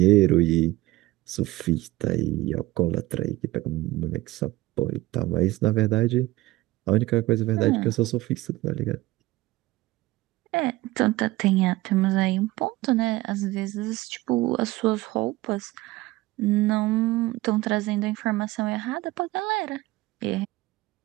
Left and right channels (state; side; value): quieter; left; 18.6 dB